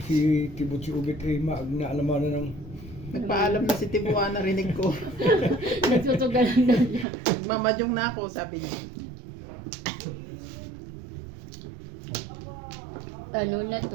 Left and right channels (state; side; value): drops out; left; at 7.1 s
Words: Tibo si Ubek ay naalamanan ng... Nagpaalam na si Tibuan, narinig ko. Nagsusugalan daw niya. Mamadyong na ako, sabi niya. Ano na